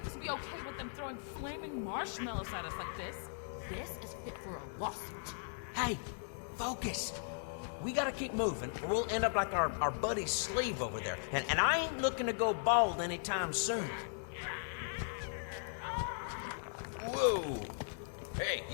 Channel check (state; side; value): silent; right; 52 dB below the other